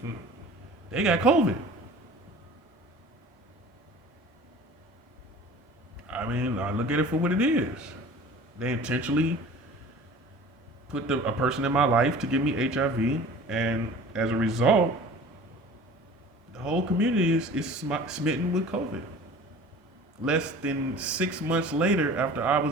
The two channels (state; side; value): normal; both; correlation 0.43